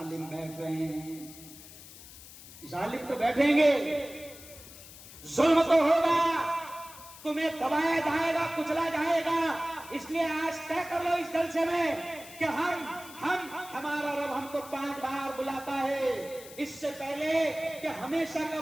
بیٹھ رہے ہیں. ظالم تو بیٹھیں گے, ظلم تو ہوگا, تمہیں دبایا جائے گا, کچلا جائے گا. اس لیے آج طے کر لو اس جلسے میں کہ ہمارا رب ہم کو 5 بار بلاتا ہے, اس سے پہلے کہ ہمیشہ کا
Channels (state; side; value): noise; left; hiss, 17 dB below the sound